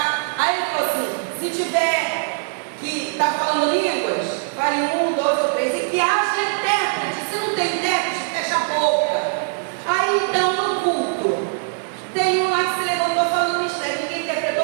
Aí ele falou assim, se tiver que está falando línguas, fale 1, 2 ou 3, e que haja intérprete. Se não tem intérprete, fecha a boca. Aí então no culto, tem um lá que se levantou falando mistério, ninguém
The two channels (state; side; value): silent; left; digital silence